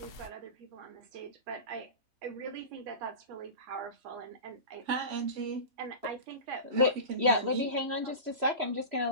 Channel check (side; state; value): left; late; 3.0 ms